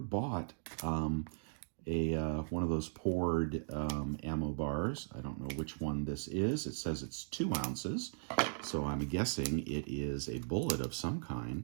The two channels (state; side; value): silent; left; digital silence